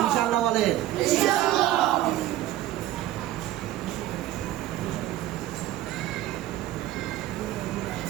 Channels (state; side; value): quieter; left; 14.2 dB